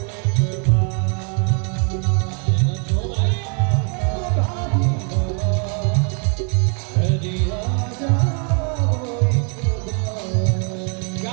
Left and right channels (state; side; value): quieter; left; 40.0 dB